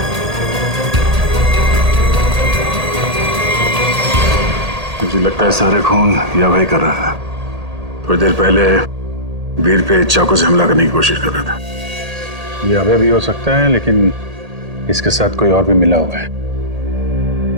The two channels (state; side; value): late; left; 1.8 ms